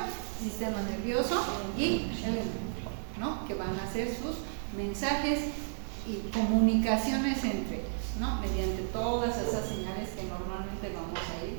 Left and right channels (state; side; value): silent; left; 56 dB below the other